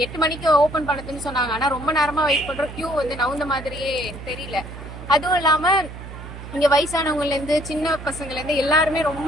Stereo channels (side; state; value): right; noise; hum, 12 dB below the sound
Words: 8 மணிக்கு ஓபன் பண்ணதுன்னு சொன்னாங்க. ஆனா ரொம்ப நேரமா வெயிட் பண்றோம். கியூ வந்து நவுந்த மாதிரியே தெரியல. அதுவும் இல்லாம இங்க வயசானவங்கல இருந்து சின்ன பசங்கள்ல இருந்து எல்லாருமே ரொம்ப